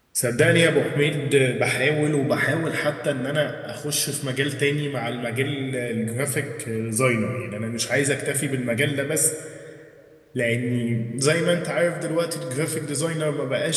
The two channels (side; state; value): both; identical; correlation 1.00